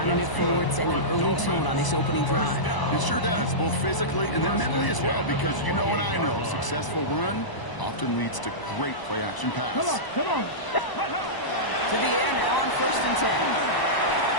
it forward, sending an early tone on this opening drive. It sure does, both physically and then mentally as well, because you know and I know, successful run often leads to great play-action pass. Come on, come on! To the air now on 1st and 10.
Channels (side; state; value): right; late; 1.0 ms